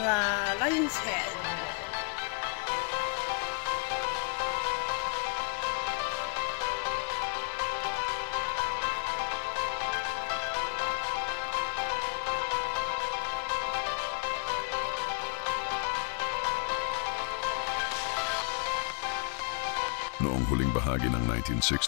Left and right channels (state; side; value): quieter; right; 36.9 dB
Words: Lion's Head. Noong huling bahagi ng